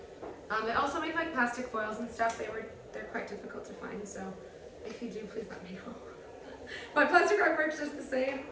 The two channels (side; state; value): both; identical; correlation 1.00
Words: They also make like plastic foils and stuff. They're quite difficult to find, so if you do, please let me know. But plastic rug works just the same.